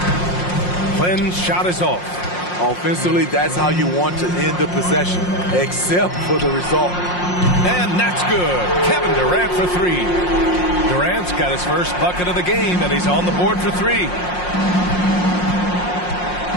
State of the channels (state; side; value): late; right; 5.6 ms